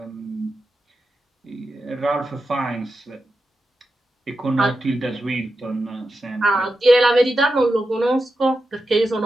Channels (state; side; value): normal; both; correlation 0.89